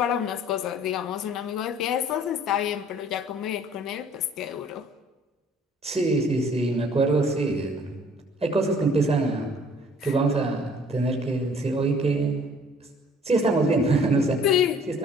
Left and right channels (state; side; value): normal; both; correlation 0.55